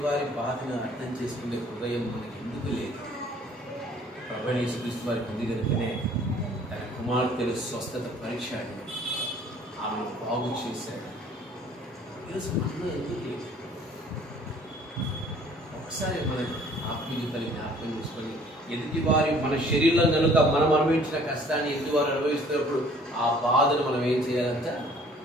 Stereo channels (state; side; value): normal; both; correlation 0.55